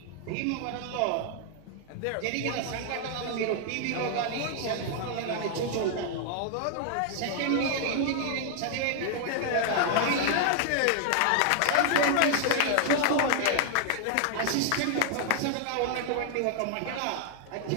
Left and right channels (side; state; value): both; different; correlation 0.00